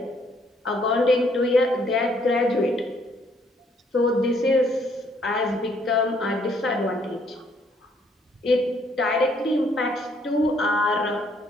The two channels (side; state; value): both; normal; correlation 0.67